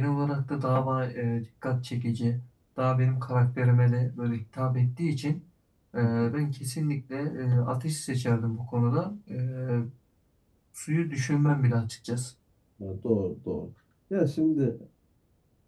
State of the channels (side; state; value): both; identical; correlation 1.00